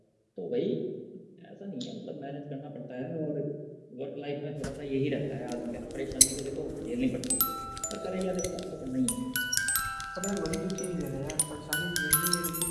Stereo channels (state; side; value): identical; both; correlation 1.00